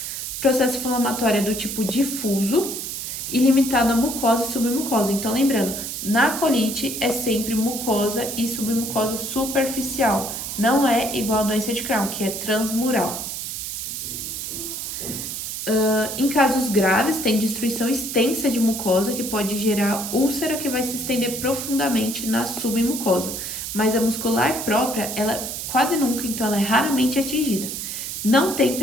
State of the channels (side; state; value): right; noise; hiss, 5 dB below the sound